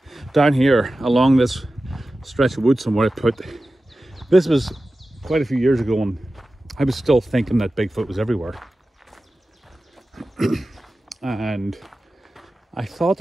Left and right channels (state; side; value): normal; both; correlation 0.94